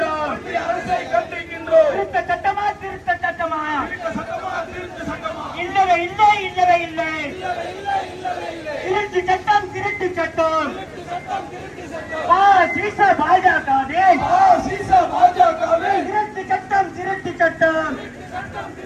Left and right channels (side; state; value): both; identical; correlation 1.00